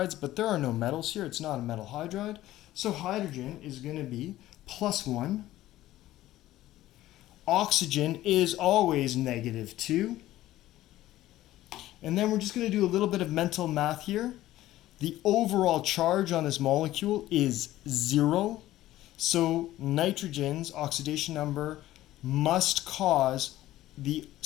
but there are no metals here. It's not a metal hydride. So hydrogen is going to be +1. Oxygen is always -2. And then we're just going to do a little bit of mental math here. The overall charge on this molecule is 0. So nitrogen's oxidation number must cause the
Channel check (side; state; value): right; quieter; 15.0 dB